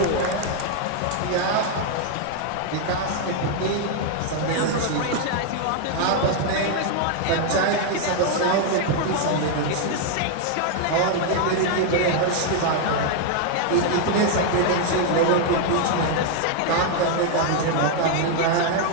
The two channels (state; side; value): different; both; correlation 0.00